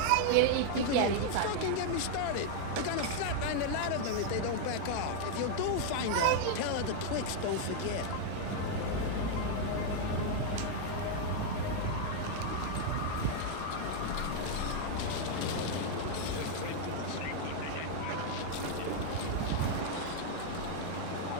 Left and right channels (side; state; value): both; different; correlation 0.00